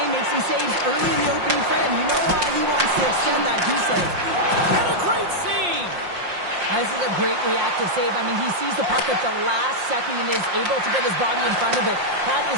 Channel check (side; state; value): left; late; 5.6 ms